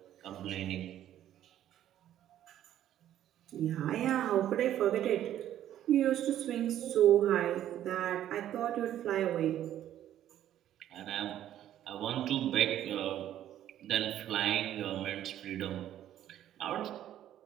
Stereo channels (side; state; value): left; quieter; 11.7 dB